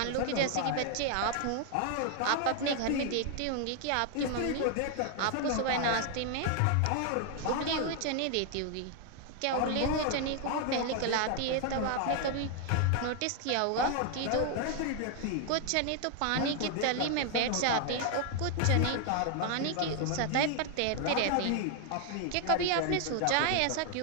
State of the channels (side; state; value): both; different; correlation 0.00